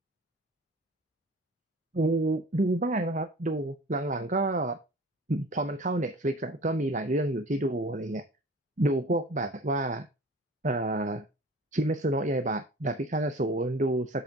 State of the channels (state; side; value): normal; both; correlation 0.43